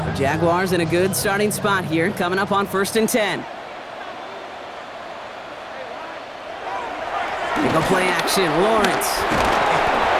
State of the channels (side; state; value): both; identical; correlation 1.00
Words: Jaguars in a good starting spot here, coming up on 1st and 10. They go play action, Lawrence.